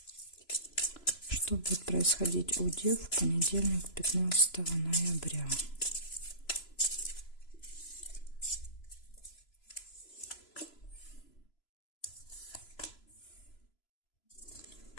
Что будет происходить у дев в понедельник, 15 ноября?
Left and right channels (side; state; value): right; late; 3.0 ms